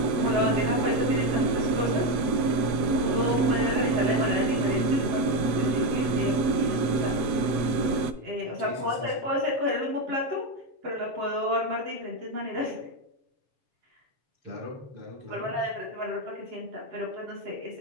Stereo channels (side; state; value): left; late; 7.9 ms